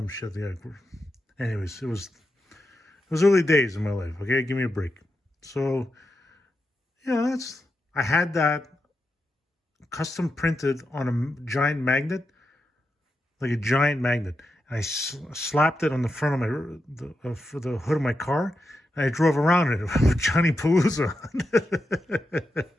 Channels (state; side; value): normal; both; correlation 0.87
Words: shit. Yeah. Anyways, it was early days in my life. Okay, give me a break. So, yeah, I had that custom printed on a giant magnet, like a giant magnet. And I slapped it on the front of for the hood of my car, and I drove around in it with Johnny Palooza.